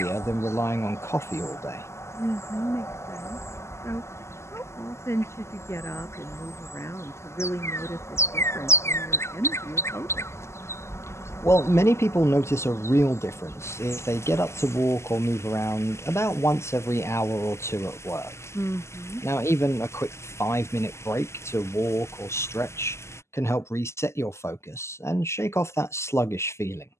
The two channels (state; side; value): late; right; 0.13 ms